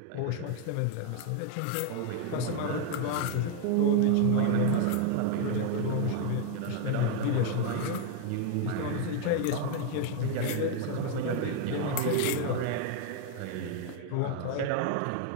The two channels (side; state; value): both; different; correlation 0.00